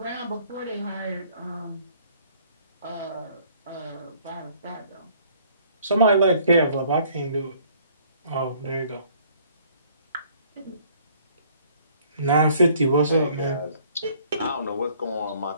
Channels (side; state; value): both; inverted; correlation -0.59